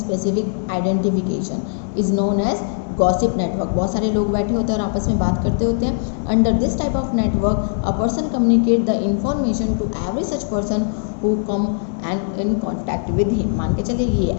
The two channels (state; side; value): silent; right; digital silence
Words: identification is known as gossip network. बहुत सारे लोग बैठे होते हैं और आपस में बात करते होते हैं। Under this type of network a person communicate the information to every such person who come and in contact with him. मान के चलिए ये